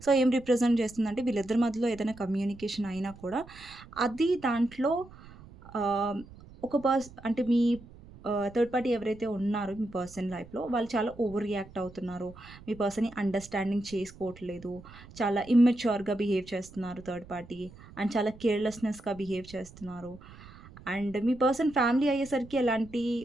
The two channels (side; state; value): right; noise; rumble, 20 dB below the sound